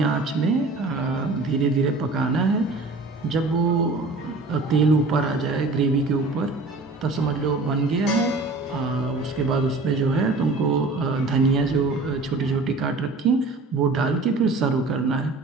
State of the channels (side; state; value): left; quieter; 3.3 dB